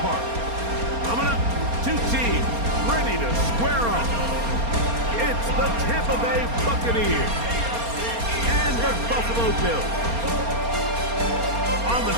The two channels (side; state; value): left; late; 4.3 ms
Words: Park. Coming up, two teams ready to square off. It's the Tampa Bay Buccaneers and the Buffalo Bills. On the